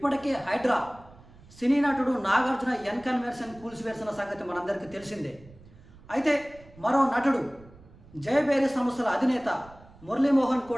హైడ్రా సినీ నటుడు నాగార్జున ఎన్కన్వెన్షన్ కూల్చివేసిన సంగతి మనందరికీ తెలిసిందే. అయితే మరో నటుడు జయబేరి సంస్థల అధినేత మురళీమోహన్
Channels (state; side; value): noise; right; rumble, 23 dB below the sound